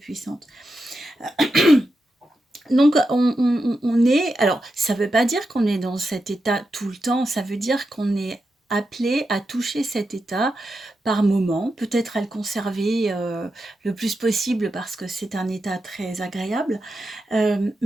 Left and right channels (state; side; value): normal; both; correlation 0.88